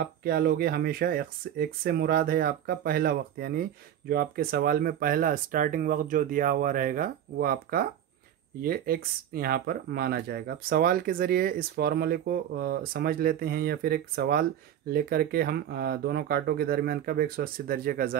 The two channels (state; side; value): quieter; left; 10.5 dB